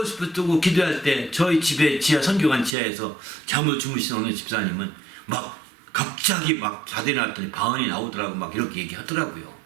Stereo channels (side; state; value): left; drops out; at 2.7 s